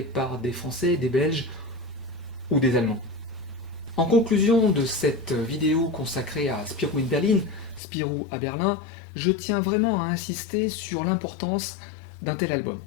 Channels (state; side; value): drops out; right; at 7.8 s